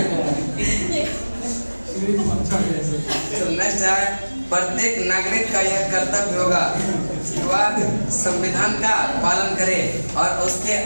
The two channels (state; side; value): inverted; both; correlation -1.00